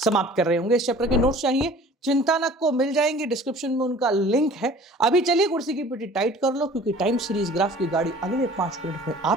समाप्त कर रहे होंगे। इस चैप्टर के नोट्स चाहिए, चिंता न को मिल जाएंगे, डिस्क्रिप्शन में उनका लिंक है। अभी चलिए कुर्सी की पीठी टाइट कर लो, क्योंकि टाइम सीरीज ग्राफ की गाड़ी अगले 5 मिनट में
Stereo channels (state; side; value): normal; both; correlation 0.47